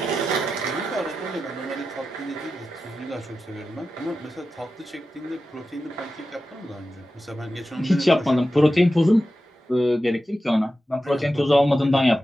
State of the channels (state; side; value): normal; both; correlation 0.92